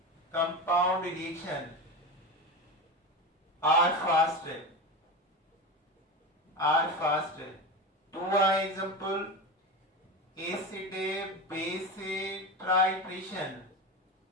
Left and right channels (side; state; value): both; normal; correlation 0.23